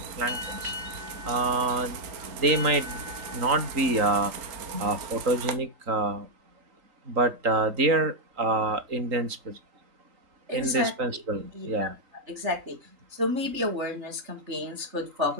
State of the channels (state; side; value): late; left; 3.8 ms